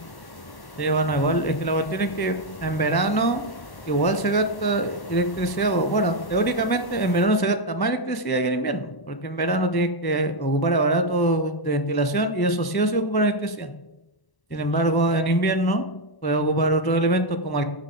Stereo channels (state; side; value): late; right; 1.0 ms